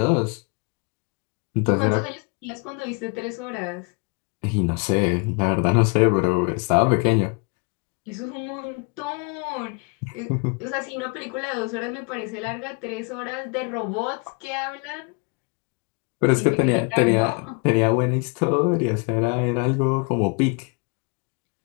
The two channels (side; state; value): right; quieter; 33.5 dB